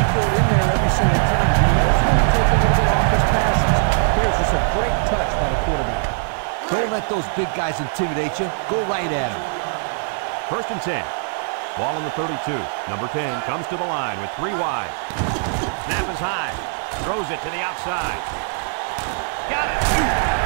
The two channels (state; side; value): silent; left; digital silence